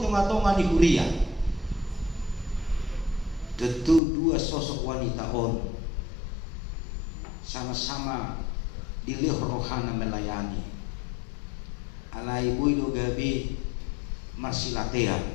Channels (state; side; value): drops out; right; at 4.0 s